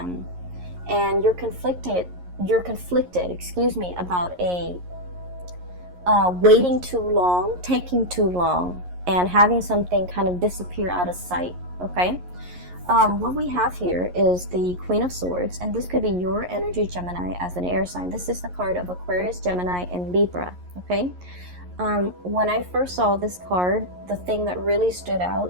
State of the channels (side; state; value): left; late; 11 ms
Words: and you're conflicted excuse me, about a waiting too long, taking too long, and having something kind of disappear out of sight. Okay, what we have here is the Queen of Swords, and this could be your energy, Gemini, as an air sign. This is the card of Aquarius, Gemini, and Libra. Okay, when I first saw this card, the thing that really stood